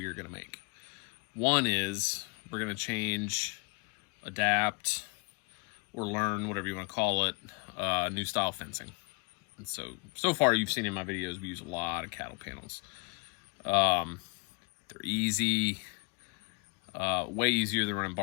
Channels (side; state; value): right; quieter; 31.4 dB